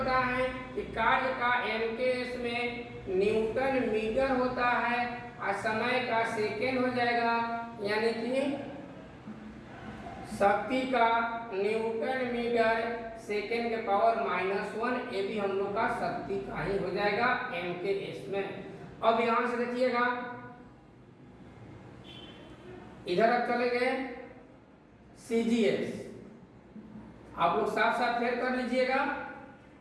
है कि कार्य का एमकेएस में न्यूटन मीटर होता है और समय का सेकेंड हो जाएगा, यानी कि शक्ति का न्यूटन मीटर सेकेंड के पावर -1। ये भी हम लोग का शक्ति का ही हो जाएगा एमकेएस में। अब यहाँ से देखिएगा इधर अब चले गए सीजीएस। आप लोग साफ साफ फेर कर लीजिएगा।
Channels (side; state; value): both; identical; correlation 1.00